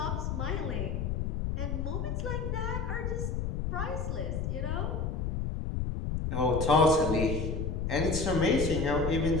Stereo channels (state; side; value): noise; left; rumble, 1 dB below the sound